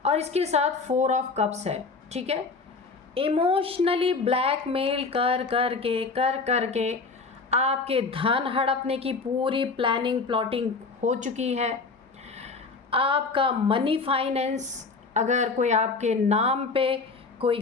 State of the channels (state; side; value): quieter; right; 4.3 dB